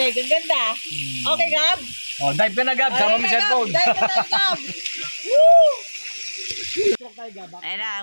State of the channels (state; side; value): inverted; both; correlation -1.00